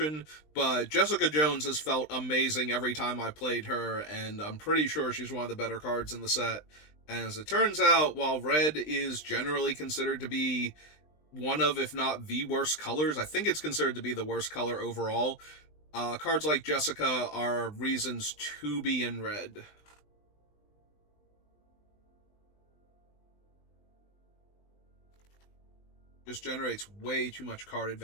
but Jessica Jones has felt amazing every time I played her, and I'm pretty sure she's one of the better cards in the set. And as it turns out, while Red is generally considered to be one of, if not the worst colors, I think it's considered to be the worst color overall, cards like Jessica are reasons to be in Red. Just generates way too much card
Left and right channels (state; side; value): late; right; 20 ms